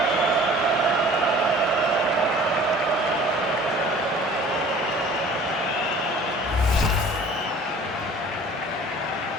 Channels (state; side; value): normal; both; correlation 0.48